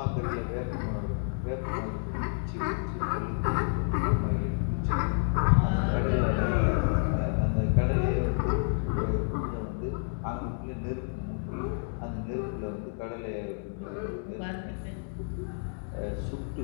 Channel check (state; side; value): silent; right; digital silence